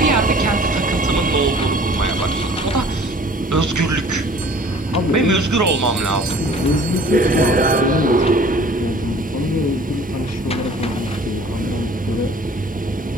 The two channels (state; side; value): normal; both; correlation 0.50